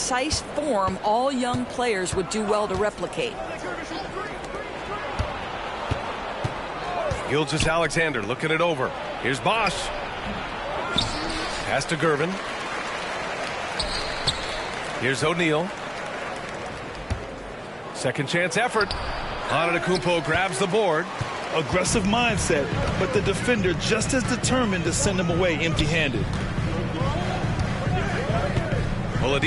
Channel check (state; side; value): identical; both; correlation 1.00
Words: form all young players would do well to replicate. Gilgeous-Alexander looking it over. Here's Bosch. Pass to Gervin. Here's O'Neal. Second chance effort. Antetokounmpo grabs the board. Aggressive mindset, but the defender just as determined to send him away empty-handed.